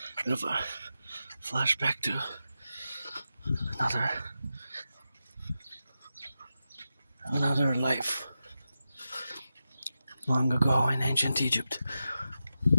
bit of a flashback to another life long ago in ancient Egypt.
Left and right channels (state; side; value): inverted; both; correlation -0.90